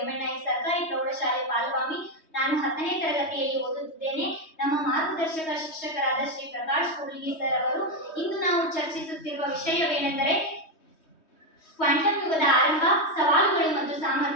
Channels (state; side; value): late; right; 3.2 ms